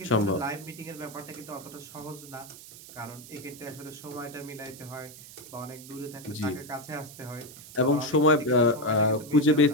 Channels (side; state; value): right; noise; hiss, 17 dB below the sound